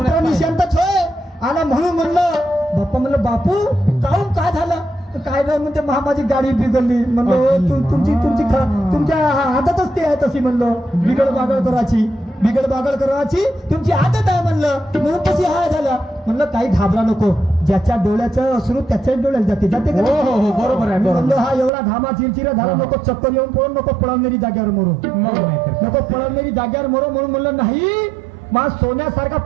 निशांतच होय. आला म्हणून म्हणलं बाप्पा म्हणलं बापू काहून काय झालं. काय नाही म्हणते माझी गाडी बिघडली. म्हणलं तुमच्या आदतच ते आहे तशी. म्हणलं बिघड बागड करायची तुमची आदत आहे. म्हणून तशी हाय झालं. म्हणलं काही घाबरा नको. ज्याच्या डोळ्याचं अश्रू त्याच्याच डोळ्यात जाते हो बरोबर आहे. म्हणलं हा एवढा घामा चिरचिरा झाला नको. चक्कर येऊन पळून नको पळवणारी जाग्यावर मरो म्हणून म्हणलं नाही मा सोन्यासारखा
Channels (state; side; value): drops out; left; at 21.7 s